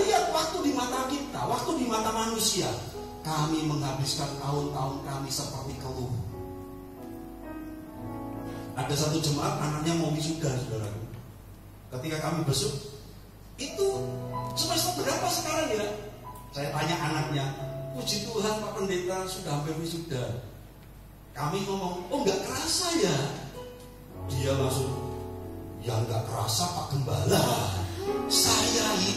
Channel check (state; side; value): identical; both; correlation 1.00